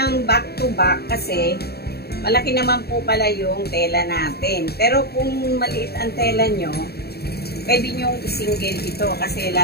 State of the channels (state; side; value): late; right; 0.46 ms